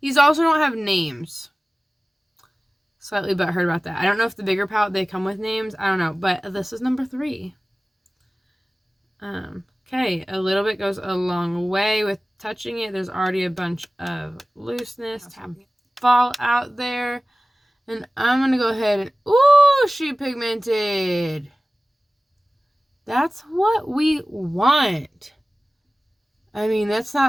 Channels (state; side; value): normal; both; correlation 0.97